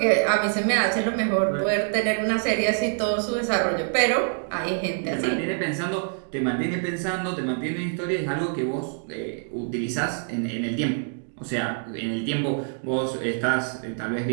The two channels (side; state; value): left; silent; 61 dB below the other